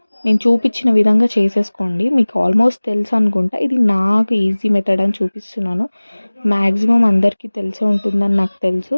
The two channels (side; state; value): both; inverted; correlation -1.00